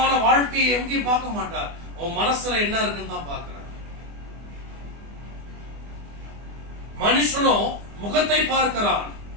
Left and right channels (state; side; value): late; left; 24 ms